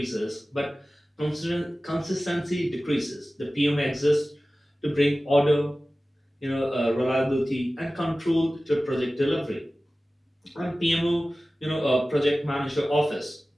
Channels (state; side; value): normal; both; correlation 0.96